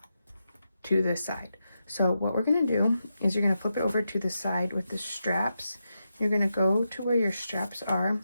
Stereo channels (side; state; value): both; inverted; correlation -0.87